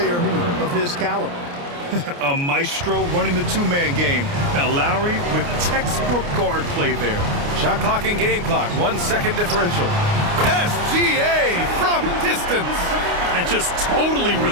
of his caliber. A maestro running the two-man game. Now Lowry with textbook guard play there. Shot clock and game clock, 1 second differential. SGA from distance. And just totally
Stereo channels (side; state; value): left; late; 29 ms